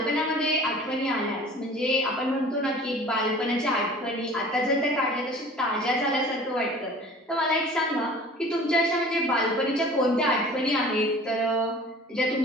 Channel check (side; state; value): both; normal; correlation 0.45